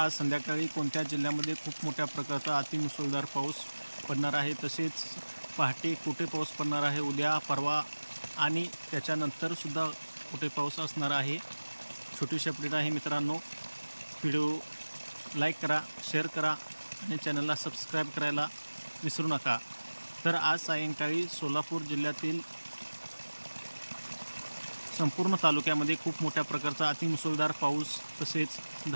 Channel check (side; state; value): both; inverted; correlation -1.00